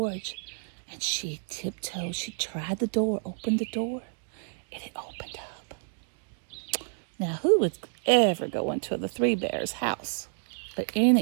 and she tiptoed. She tried the door, opened the door, and it opened up. Now, who would ever go into the 3 bears' house? But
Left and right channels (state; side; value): silent; left; digital silence